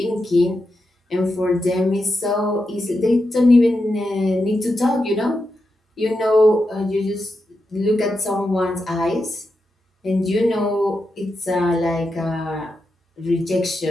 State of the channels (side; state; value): both; normal; correlation 0.87